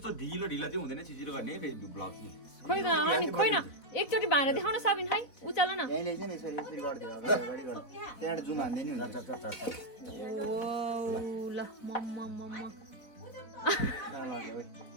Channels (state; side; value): late; right; 4.0 ms